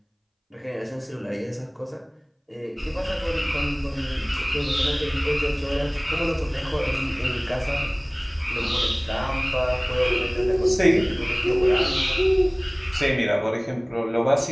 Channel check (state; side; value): identical; both; correlation 1.00